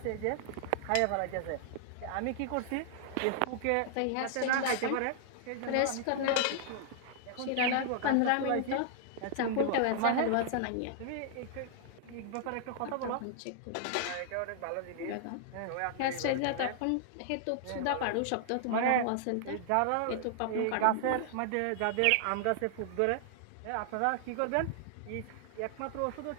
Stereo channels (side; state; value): both; different; correlation -0.01